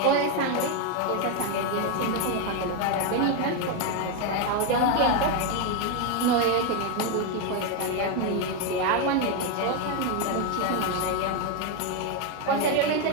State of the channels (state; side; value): different; both; correlation 0.02